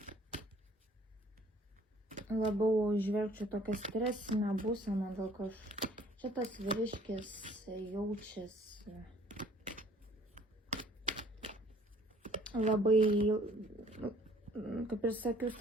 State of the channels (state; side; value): normal; both; correlation 0.57